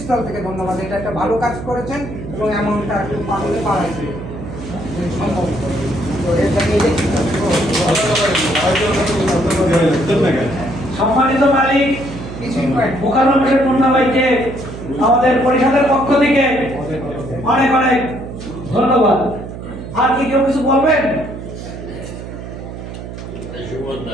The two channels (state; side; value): noise; right; hum, 10 dB below the sound